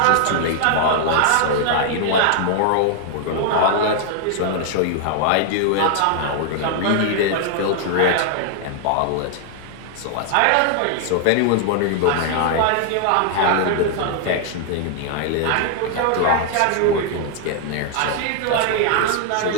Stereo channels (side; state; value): both; different; correlation 0.00